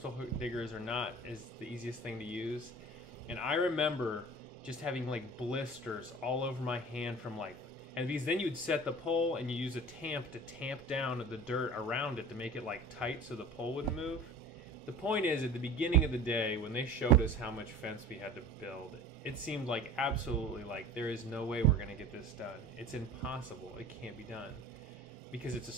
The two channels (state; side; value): normal; both; correlation 0.40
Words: diggers are not the easiest thing to use. And I remember just having blisters all over my hand from and because then you'd set the pole and you use a tamp to tamp down the dirt around it to make it tight so the pole wouldn't move. The point is, at the beginning of the day when they showed us how much fence we had to build, it seemed absolutely there is no way we're going to get this done. It's impossible. It can't be done. Because it's a